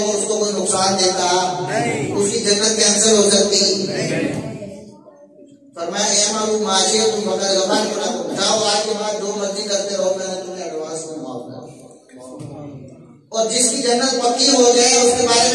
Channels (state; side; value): identical; both; correlation 1.00